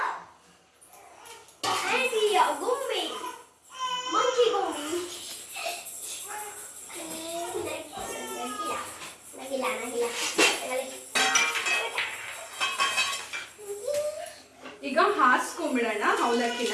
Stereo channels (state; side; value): identical; both; correlation 1.00